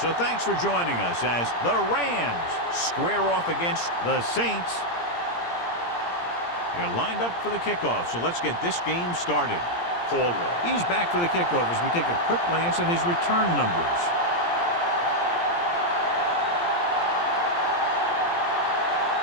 thanks for joining us as the Rams square off against the Saints. They're lined up for the kickoff, so let's get this game started. Caldwell. He's back for the kickoff as we take a quick glance at his return numbers.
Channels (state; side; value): late; right; 17 ms